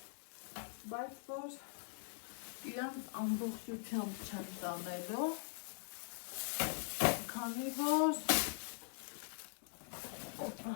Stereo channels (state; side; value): silent; right; digital silence